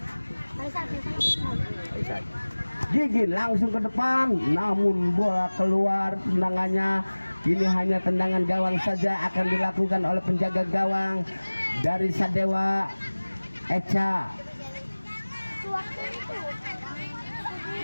Gigin langsung ke depan, namun bola keluar tendangannya. Kini hanya tendangan gawang saja akan dilakukan oleh penjaga gawang dari Sadewa Echa.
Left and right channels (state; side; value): inverted; both; correlation -1.00